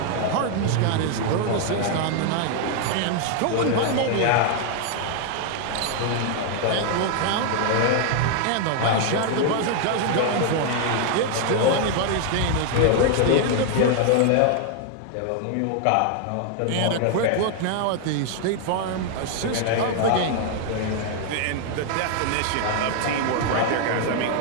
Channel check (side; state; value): both; different; correlation 0.00